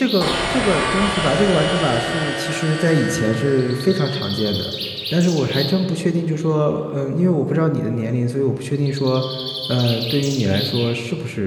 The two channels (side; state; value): both; identical; correlation 1.00